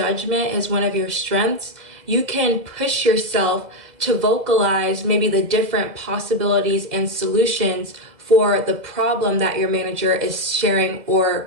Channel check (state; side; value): late; left; 2.0 ms